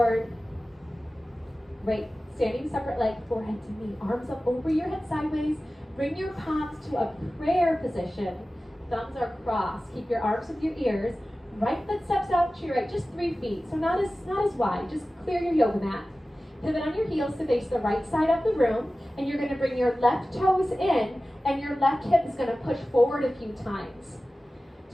right, standing separate leg, forehead to knee, arms up over your head sideways. Bring your palms to a prayer position. Thumbs are crossed. Keep your arms with your ears. Right foot steps out to your right, just 3 feet, so not as wide. Just clear your yoga mat. Pivot on your heels to face the right side of the room, and you're going to bring your left toes in, and your left hip is going to push forward a few times.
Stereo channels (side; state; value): both; normal; correlation 0.96